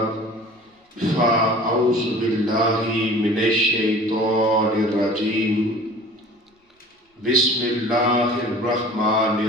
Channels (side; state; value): both; normal; correlation 0.44